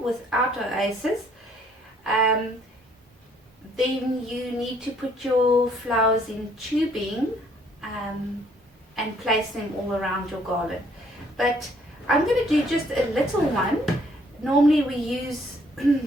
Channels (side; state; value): both; normal; correlation 0.64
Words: without oasis, then you need to put your flowers in tubing and place them all around your garland. But I'm going to do just a little one. Normally we use